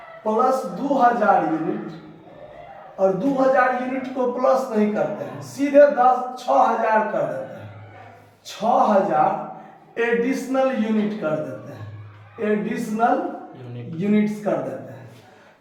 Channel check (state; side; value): identical; both; correlation 1.00